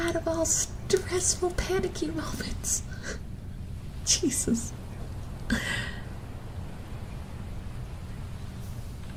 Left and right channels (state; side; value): identical; both; correlation 1.00